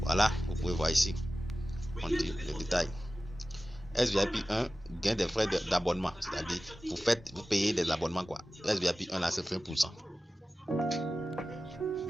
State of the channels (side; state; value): both; normal; correlation 0.96